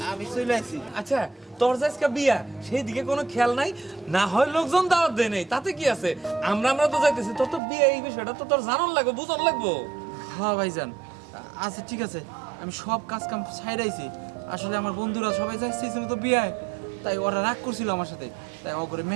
আমি চলে আসছি। আচ্ছা, তোর যে আজকে বিয়া, সেই দিকে কোনো খেয়াল নাই? না হয় লোকজন দাওয়াত দেয় নাই, তাতে কি আছে? আমরা তো যাইতেছি, তোর তো বিয়ে, এই বিষয়টা তো তোর জানান লাগবে, বুঝন লাগবো। হ্যাঁ ভাইজান, আচ্ছা ঠিক আছে, আমি সব কাজ কাম ছাইড়াইছি। আসলে আমার বন্ধুরা সবাই যাইছিল তো বিয়ায়, তাই ওরা রাগ করছিল আমার সাথে, তাই ও করে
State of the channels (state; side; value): drops out; left; at 7.6 s